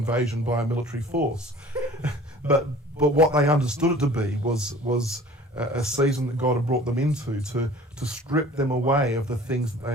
by a military force, but what they understood it to be was a season that God had brought them into to strip them away of the things that they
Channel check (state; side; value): normal; both; correlation 0.47